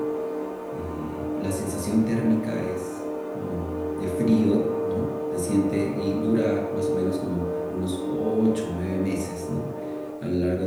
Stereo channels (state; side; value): identical; both; correlation 1.00